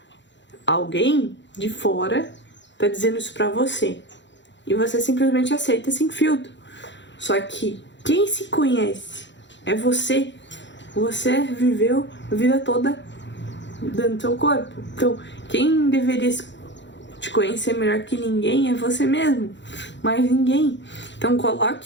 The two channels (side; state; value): right; late; 0.53 ms